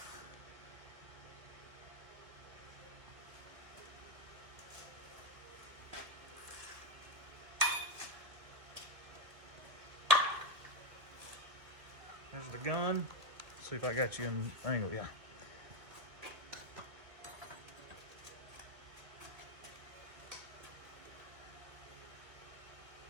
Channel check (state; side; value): late; left; 2.3 ms